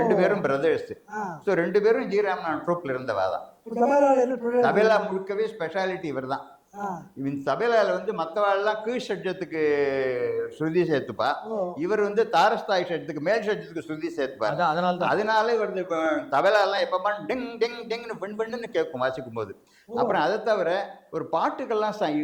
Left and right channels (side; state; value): both; identical; correlation 1.00